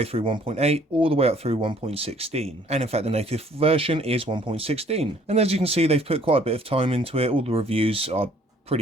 through 1.8, all the way up through 1.16, and in fact the native version is 1.16. And as you can see, they've put quite a bit of time into it. All the reviews are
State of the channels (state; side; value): normal; both; correlation 0.59